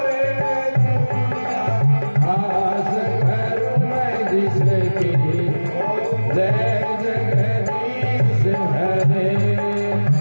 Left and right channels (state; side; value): inverted; both; correlation -1.00